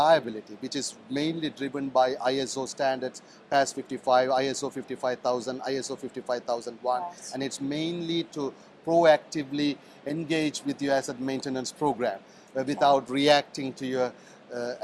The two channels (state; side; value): identical; both; correlation 1.00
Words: which is mainly driven by ISO standards, PAS 55, ISO 55000, ISO 55001, and it's mainly to proactively engage with your asset maintenance program without reacting to your